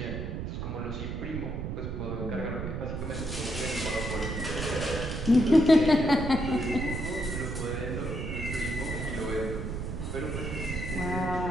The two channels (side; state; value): right; noise; rumble, 4 dB below the sound